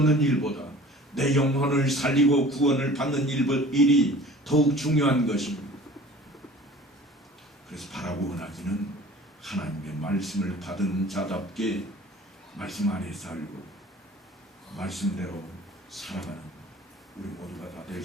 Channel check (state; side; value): normal; both; correlation 0.45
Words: 일보다 내 영혼을 살리고 구원을 받는 일이 더욱 중요한 것입니다. 그래서 바라고 원하기는 하나님의 말씀을 받은 자답게 말씀 안에 살고 말씀대로 살아가는 우리 모두가 다 될